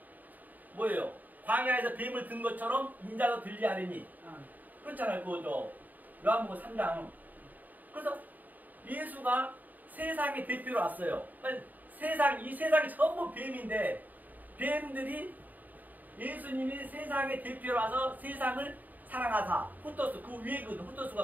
뭐예요? 광야에서 뱀을 든 것처럼 인자도 들리하리니. 그렇잖아요. 요한복음 3장. 그래서 예수가 세상의 대표로 왔어요. 이 세상이 전부 뱀인데, 뱀들이 예수님이 세상의 대표로 와서 세상을 사랑하사, 후토스, 그 위에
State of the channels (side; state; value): left; late; 0.083 ms